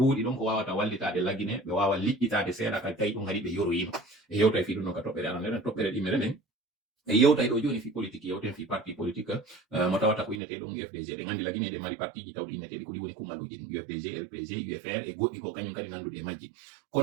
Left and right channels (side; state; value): left; drops out; at 10.4 s